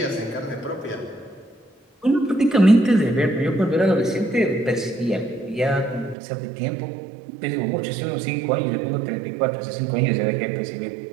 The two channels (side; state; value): left; drops out; at 6.2 s